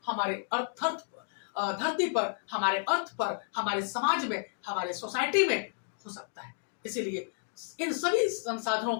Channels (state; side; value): silent; right; digital silence